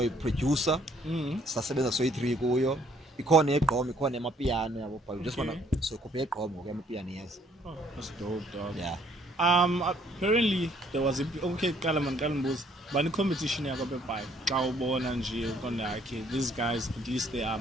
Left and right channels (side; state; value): both; normal; correlation 0.63